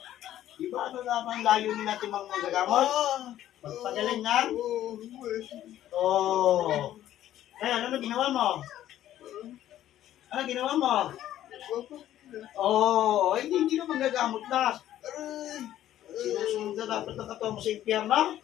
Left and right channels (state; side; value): quieter; right; 12.5 dB